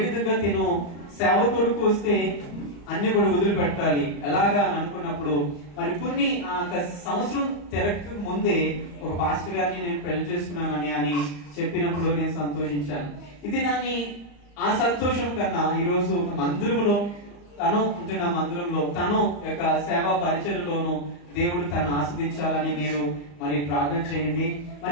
విధంగా తిను సేవ కొరకు వస్తే అన్ని కూడా వదిలిపెట్టాలి ఎలాగా అని అనుకున్నప్పుడు మరి కొన్ని సంవత్సరం తిరగక ముందే ఒక పాస్టర్ గారిని నేను పెళ్లి చేసుకున్నానని అని చెప్పినప్పుడు నేను సంతోషించాను. ఇది ఆ సంతోషం కన్నా ఈరోజు ఒక మందిరంలో తను యొక్క సేవా పరిచర్యలోను దేవుడు తను ఆస్వాదించాలని మీరు మరి ప్రార్థన చేయండి.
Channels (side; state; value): right; late; 34 ms